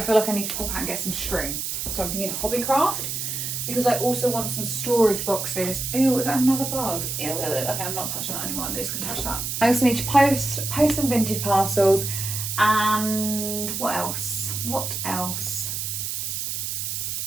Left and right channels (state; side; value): noise; right; hiss, 3 dB below the sound